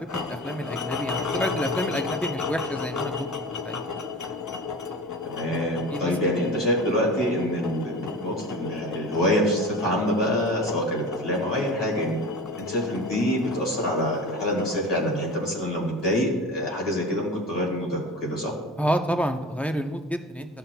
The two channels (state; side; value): normal; both; correlation 0.34